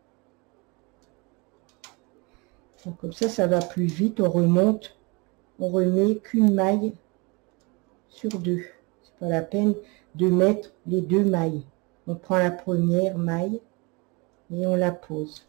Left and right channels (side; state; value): left; quieter; 28.0 dB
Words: Donc, comme ça va plus vite. On remonte, on remet qu'une maille sur deux. C'est pas la peine de mettre les deux mailles. On prend la première maille et on la pose.